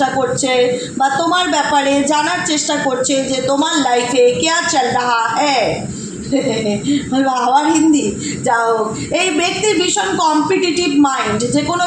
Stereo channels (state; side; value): identical; both; correlation 1.00